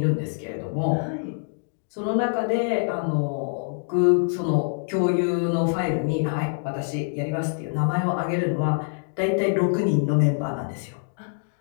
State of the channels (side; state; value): right; silent; digital silence